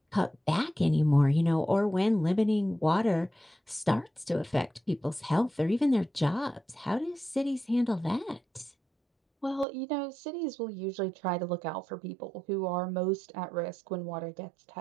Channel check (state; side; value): drops out; left; at 9.7 s